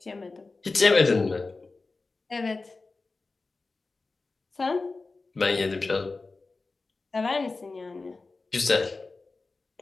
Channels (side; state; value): right; quieter; 3.7 dB